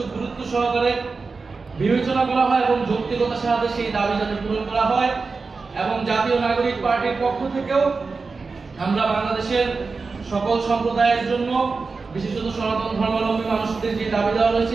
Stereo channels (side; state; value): left; quieter; 4.3 dB